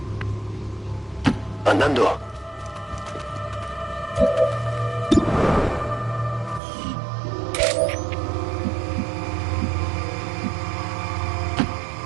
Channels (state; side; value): drops out; left; at 6.6 s